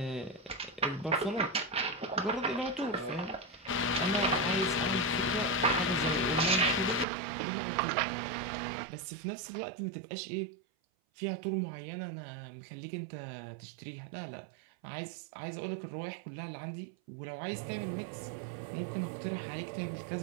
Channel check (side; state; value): left; drops out; at 7.1 s